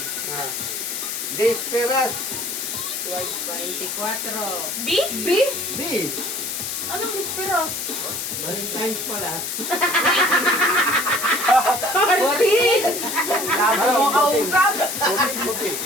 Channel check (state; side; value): noise; left; hiss, 4 dB below the sound